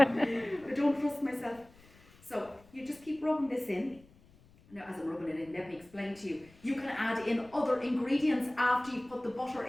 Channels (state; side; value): noise; left; rumble, 27 dB below the sound